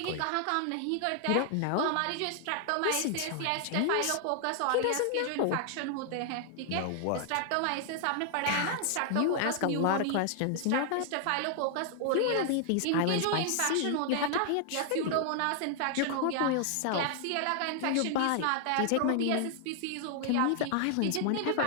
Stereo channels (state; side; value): different; both; correlation 0.00